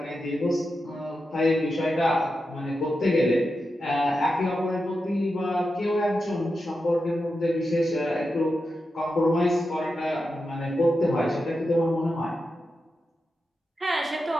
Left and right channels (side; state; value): both; normal; correlation 0.89